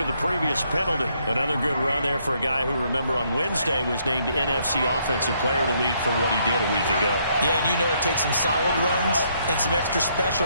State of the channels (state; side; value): inverted; both; correlation -0.71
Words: the previous penalty. Another good run there for a guy who, remember, on Wednesday was named NFC Offensive Player of the Week for what he did a week ago. Yeah, and you know it takes some solid runs and some extra